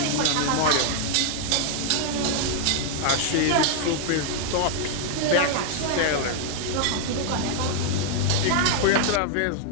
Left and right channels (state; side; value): different; both; correlation 0.00